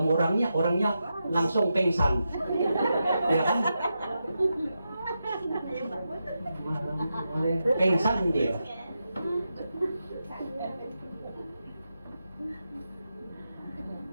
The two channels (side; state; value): both; inverted; correlation -0.88